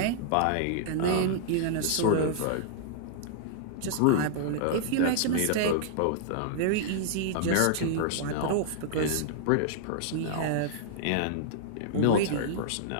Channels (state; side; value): different; both; correlation -0.01